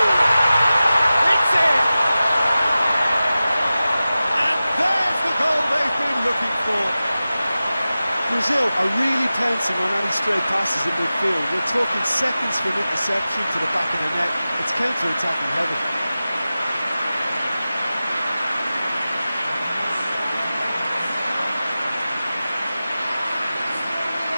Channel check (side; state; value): both; inverted; correlation -0.95